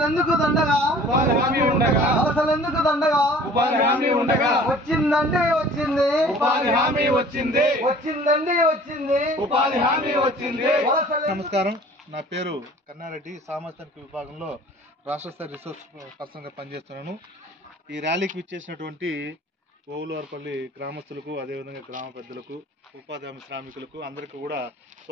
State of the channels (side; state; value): both; normal; correlation 0.49